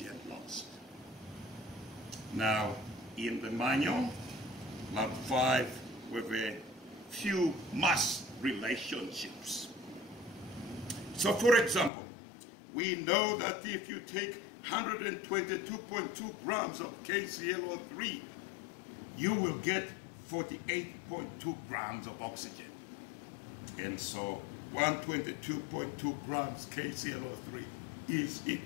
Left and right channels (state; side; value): drops out; right; at 11.9 s